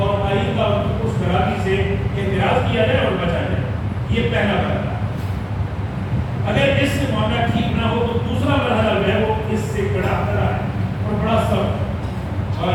آئندہ اس خرابی سے اعتراض کیا جائے اور بچا جائے۔ یہ پہلا مرحلہ۔ اگر اس سے معاملہ ٹھیک نہ ہو تو دوسرا مرحلہ جو ہے وہ اس سے بڑا ہے اور بڑا سخت، اور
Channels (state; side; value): identical; both; correlation 1.00